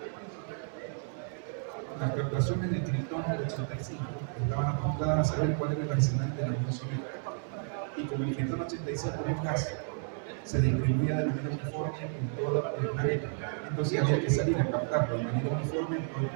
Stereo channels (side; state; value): left; silent; 57 dB below the other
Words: Las captaciones de Krypton 85 estaban apuntadas a saber cuál era el arsenal de la Unión Soviética. Y como el Krypton 85 es un gas, se distribuía de manera uniforme en todo el planeta. Entonces había que salir a captarlo de manera uniforme en todo el